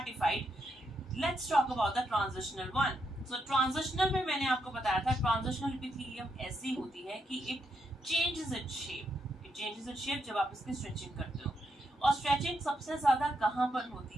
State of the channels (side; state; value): both; normal; correlation 0.80